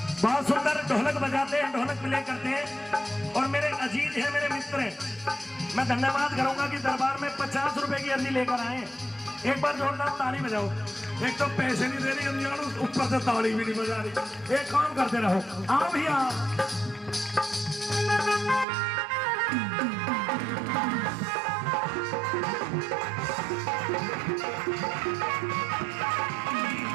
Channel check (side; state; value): left; drops out; at 18.7 s